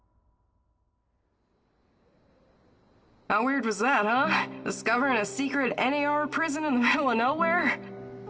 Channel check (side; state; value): both; identical; correlation 1.00